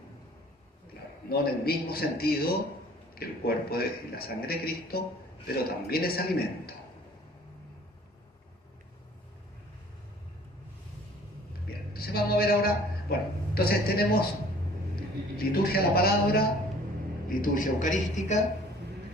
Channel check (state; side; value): normal; both; correlation 0.52